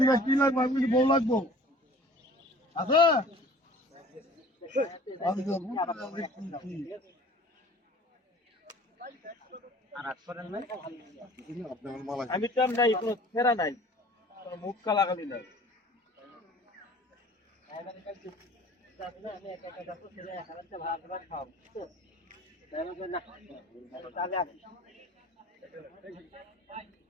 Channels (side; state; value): both; normal; correlation 0.48